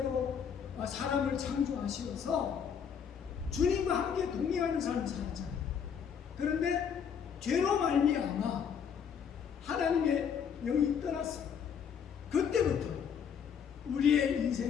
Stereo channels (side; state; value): right; quieter; 7.4 dB